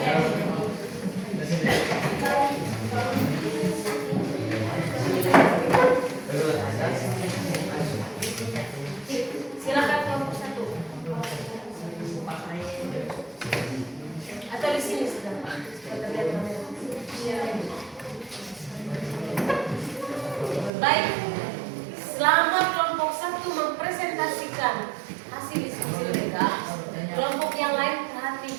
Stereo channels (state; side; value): drops out; left; at 20.7 s